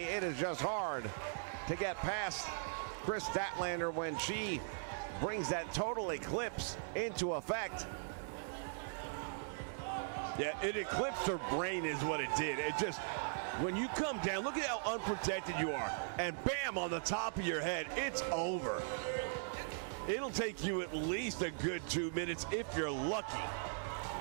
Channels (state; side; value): silent; left; digital silence